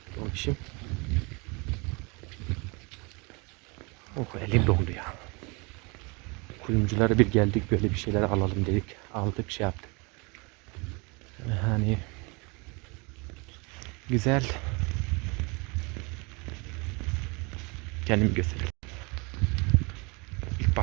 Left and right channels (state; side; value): quieter; left; 29.1 dB